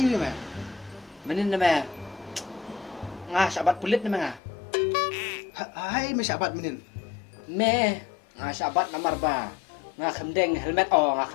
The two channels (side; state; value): right; drops out; at 4.4 s